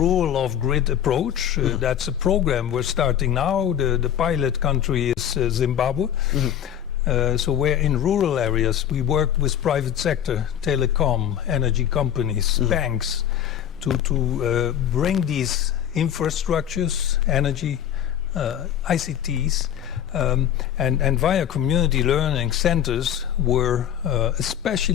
of grid approach. That's a program we're starting now. The pilot country is Zimbabwe. So where in rural areas we work with private sector, telecom, energy companies, banks, to bring these infrastructures, energy, ICTs, and via community learning centers, we're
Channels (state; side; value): quieter; right; 10.0 dB